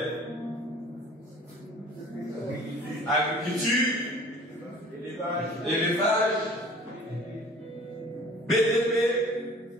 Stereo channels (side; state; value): both; normal; correlation 0.48